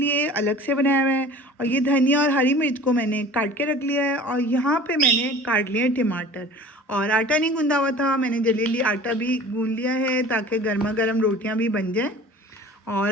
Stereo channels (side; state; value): both; normal; correlation 0.43